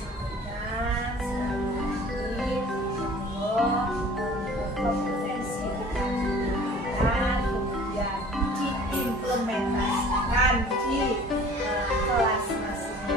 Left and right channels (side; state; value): both; normal; correlation 0.48